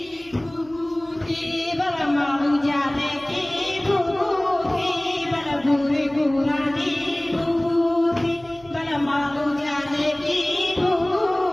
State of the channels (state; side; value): noise; right; hum, 25 dB below the sound